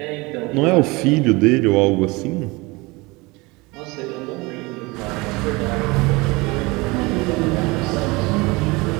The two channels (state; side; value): quieter; left; 24.1 dB